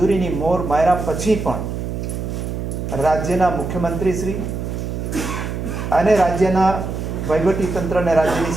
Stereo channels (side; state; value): right; noise; hum, 4 dB below the sound